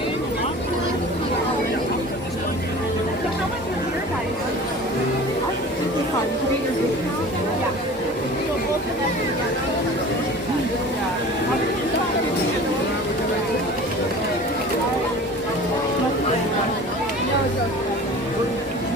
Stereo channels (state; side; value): normal; both; correlation 0.41